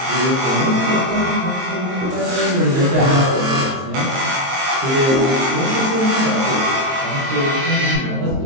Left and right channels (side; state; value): left; late; 22 ms